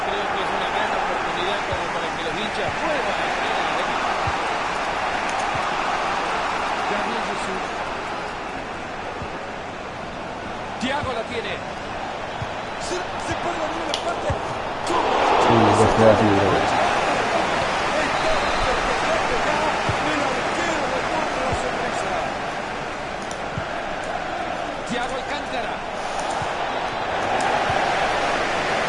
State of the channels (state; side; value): identical; both; correlation 1.00